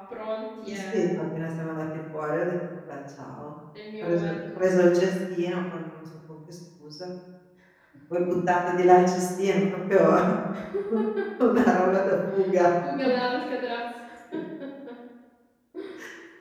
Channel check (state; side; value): identical; both; correlation 1.00